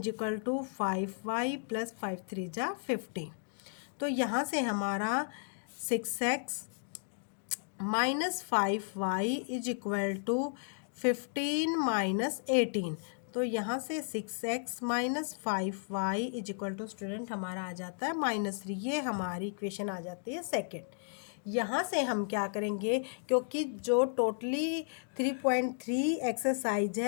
equal to 5y plus 5 3 जा 15। तो यहाँ से हमारा 6x minus 5y is equal to 15 minus 18। तो यहाँ से 6x minus 5y is equal to student हमारा आ जाता है -3। ये हमारी इक्वेशन आ जाती है सेकेंड। यहाँ से हम क्या करेंगे, क्योंकि जो टोटली 3.3 एक्सरसाइज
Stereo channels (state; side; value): silent; right; digital silence